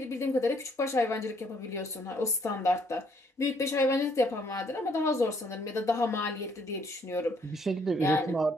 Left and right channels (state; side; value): normal; both; correlation 0.67